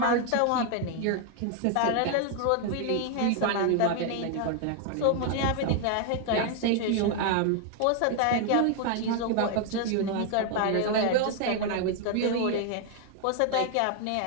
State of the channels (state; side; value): different; both; correlation 0.00